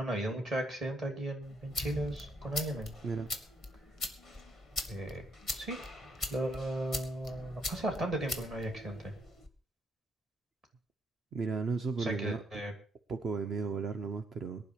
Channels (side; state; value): both; normal; correlation 0.73